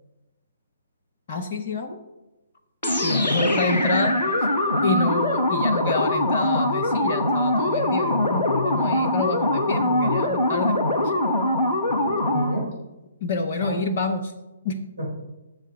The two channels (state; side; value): inverted; both; correlation -0.57